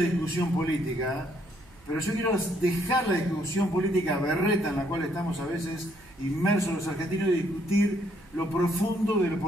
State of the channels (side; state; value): right; noise; hum, 27 dB below the sound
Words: política, pero yo quiero dejar la discusión política berreta en la cual estamos a veces inmersos los argentinos y discutir lo profundo del